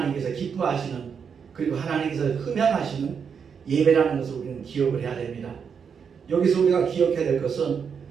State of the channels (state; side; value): quieter; left; 6.7 dB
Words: 기뻐하시는, 그리고 하나님께서 흠양하시는 예배라는 것을 우리는 기억을 해야 됩니다. 여기서 우리가 기억해야 될 것은